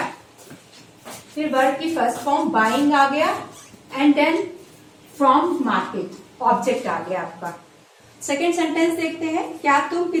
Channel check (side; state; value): both; identical; correlation 1.00